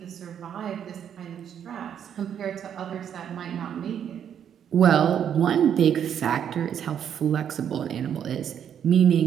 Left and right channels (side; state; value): left; quieter; 8.9 dB